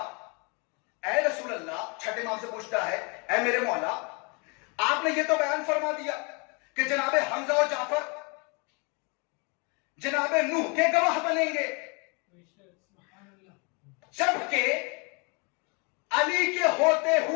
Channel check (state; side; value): quieter; right; 32.5 dB